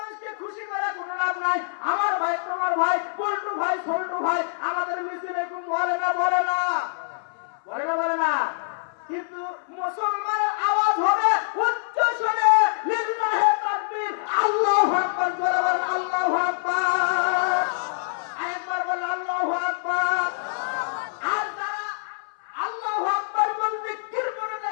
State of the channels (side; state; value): right; silent; 62 dB below the other